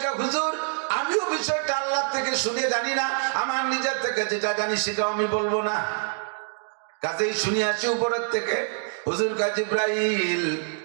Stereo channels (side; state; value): left; silent; digital silence